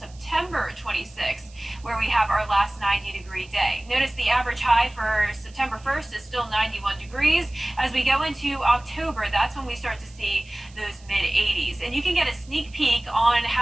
26th, where we have our last 90-degree day. Notice the average high for September 1st is still 91 degrees. As we go into October, that's when we start to see those mid-80s. And you can get a sneak peek on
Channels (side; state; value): right; noise; hiss, 26 dB below the sound